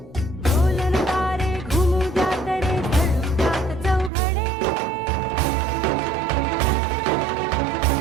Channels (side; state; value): left; drops out; at 4.1 s